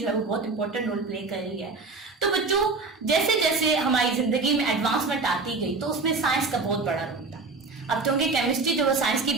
है वो बहुत इंपॉर्टेंट रोल प्ले कर रही है। तो बच्चों, जैसे जैसे हमारी जिंदगी में एडवांसमेंट आती गई तो उसमें साइंस का बहुत बड़ा रोल था। अब क्योंकि केमिस्ट्री जो वो साइंस की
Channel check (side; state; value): left; quieter; 4.0 dB